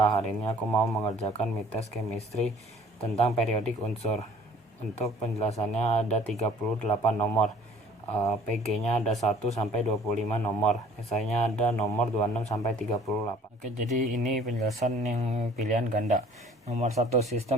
Hari ini aku mau mengerjakan mid-test chemistry tentang periodik unsur. Untuk penjelasannya ada 38 nomor, PG-nya ada 1 sampai 25 nomor, esainya ada nomor 26 sampai 38. Oke, jadi ini penjelasan yang pilihan ganda. Nomor 1,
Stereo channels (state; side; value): normal; both; correlation 0.52